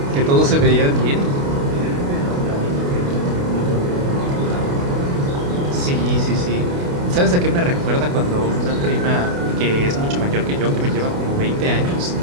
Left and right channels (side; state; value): left; late; 28 ms